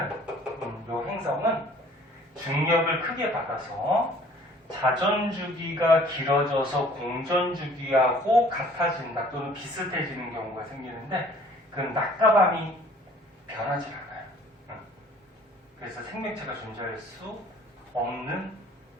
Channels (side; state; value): both; normal; correlation 0.54